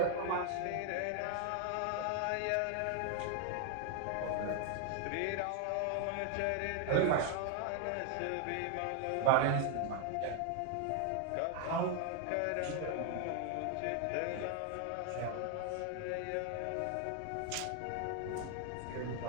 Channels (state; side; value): different; both; correlation 0.00